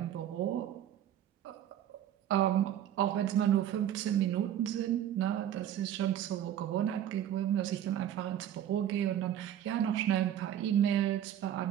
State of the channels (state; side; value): quieter; left; 10.8 dB